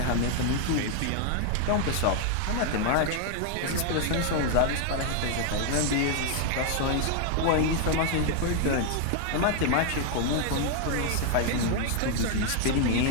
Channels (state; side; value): different; both; correlation 0.00